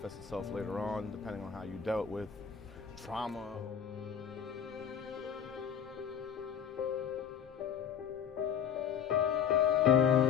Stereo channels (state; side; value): quieter; right; 7.9 dB